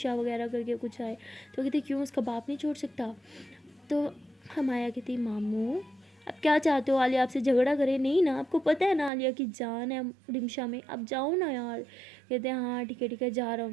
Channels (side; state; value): left; drops out; at 9.1 s